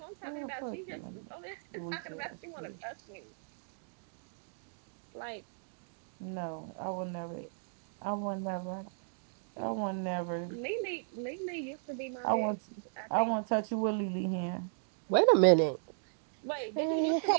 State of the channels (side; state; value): left; silent; digital silence